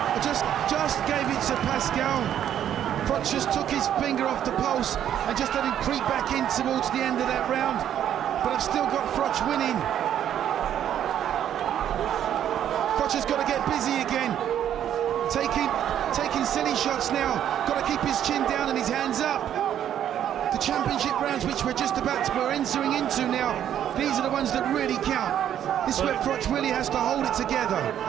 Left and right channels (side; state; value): left; quieter; 10.3 dB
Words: I just gave it to Pascal. Froch just took his finger off the pulse and just let him creep back in towards the end of that round. But I've still got Froch winning. Froch has got to get busy again. Taking silly shots now. Got to keep his chin down and his hands up. The championship rounds, which we're entering into now, these are the ones that really count. This is where Froch really has to hold it together.